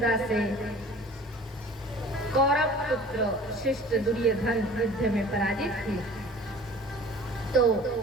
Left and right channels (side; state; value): both; normal; correlation 0.45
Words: से कौरव पुत्र शिष्ट दुर्योधन युद्ध में पराजित थे, तो